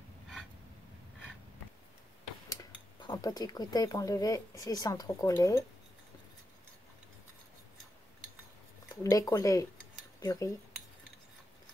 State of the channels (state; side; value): normal; both; correlation 0.86